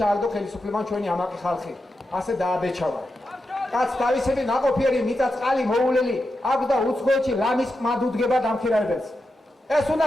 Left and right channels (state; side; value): normal; both; correlation 0.88